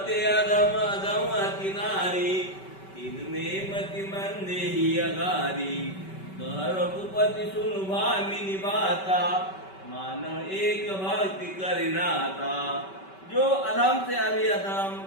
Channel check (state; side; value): late; right; 5.2 ms